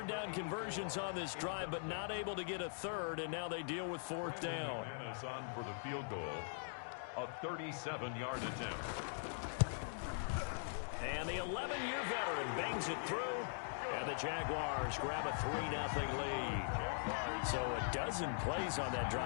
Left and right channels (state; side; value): silent; right; digital silence